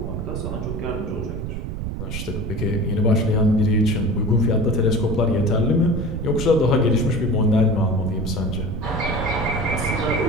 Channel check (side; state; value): right; noise; rumble, 5 dB below the sound